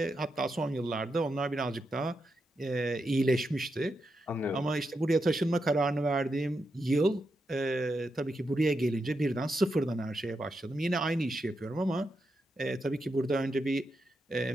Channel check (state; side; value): normal; both; correlation 0.85